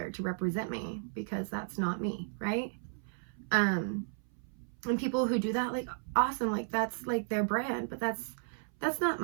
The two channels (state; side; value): silent; left; 55 dB below the other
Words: to represent me, because that's not me, right? And people who do that, like, awesome, like that's like their brand, but that's not